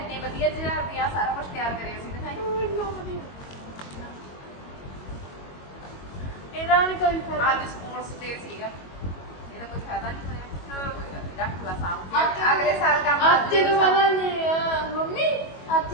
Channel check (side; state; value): right; late; 22 ms